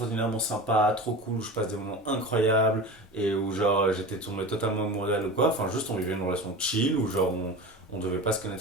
sympa, trop cool, je passe des moments incroyables, et où genre j'étais tombé totalement amoureux d'elle ou quoi. Enfin, juste on vivait une relation chill, où genre on devait pas se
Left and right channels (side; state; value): both; normal; correlation 0.31